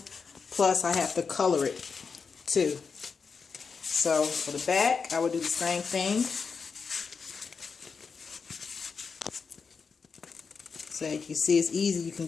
Plus, I have to color it too. So, for the back, I would do the same thing. So, you can see it's easy. You can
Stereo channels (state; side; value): quieter; right; 5.4 dB